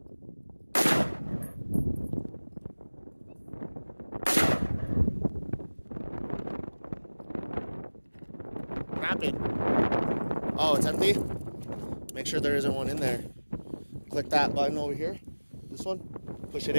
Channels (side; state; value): both; inverted; correlation -1.00